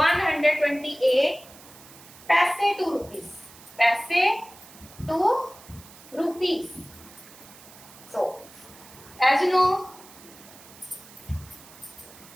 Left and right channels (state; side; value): noise; right; hiss, 20 dB below the sound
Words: paise to rupees. So, as you know,